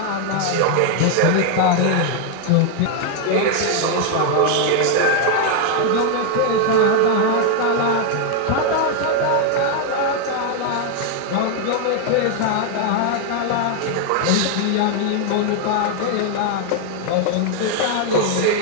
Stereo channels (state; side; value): different; both; correlation 0.00